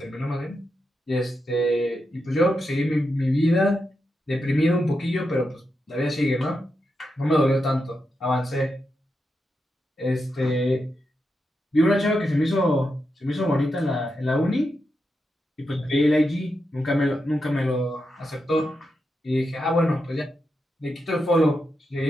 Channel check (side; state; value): both; normal; correlation 0.86